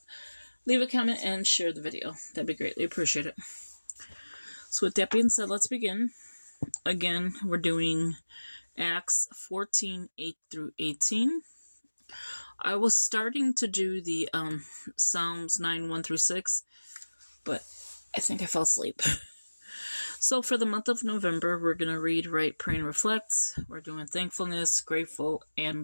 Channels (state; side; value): inverted; both; correlation -1.00